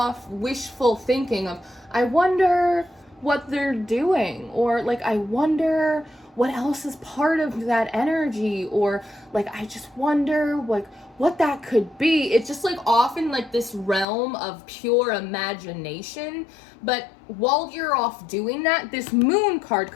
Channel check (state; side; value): drops out; right; at 14.1 s